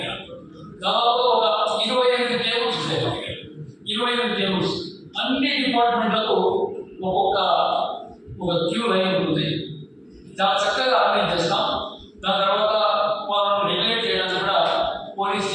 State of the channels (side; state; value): both; identical; correlation 1.00